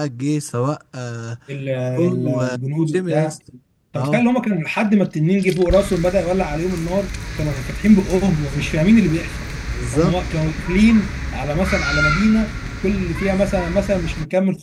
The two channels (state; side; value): identical; both; correlation 1.00